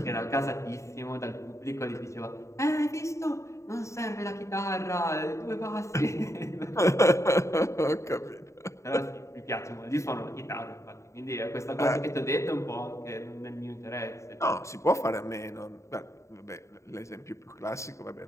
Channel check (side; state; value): right; late; 0.14 ms